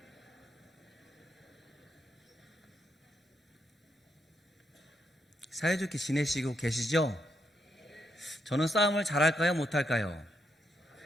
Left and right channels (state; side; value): normal; both; correlation 0.79